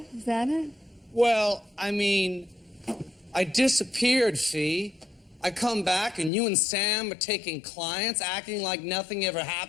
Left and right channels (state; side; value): drops out; right; at 6.3 s